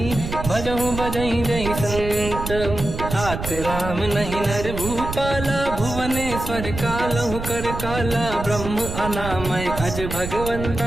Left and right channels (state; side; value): noise; right; rumble, 7 dB below the sound